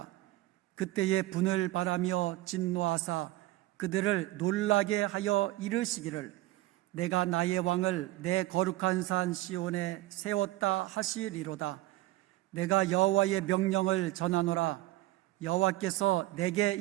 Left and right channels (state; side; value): quieter; left; 17.2 dB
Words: 그때에 분을 바라며 진노하사 그들을 놀라게 하여 이르시기를 내가 나의 왕을 내 거룩한 산 시온에 세웠다 하시리로다. 내가 여호와의 명령을 전하노라. 여호와께서 내게